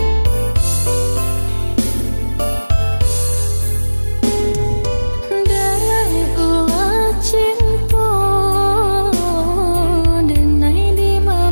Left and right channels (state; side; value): inverted; both; correlation -1.00